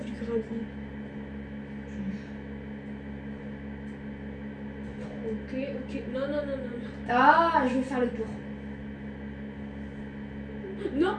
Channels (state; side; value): identical; both; correlation 1.00